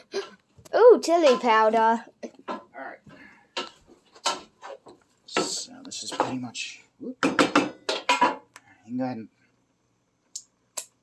Ooh, chili powder. Alright. So this is pretty much... Whoop. You can go ahead and...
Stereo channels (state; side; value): identical; both; correlation 1.00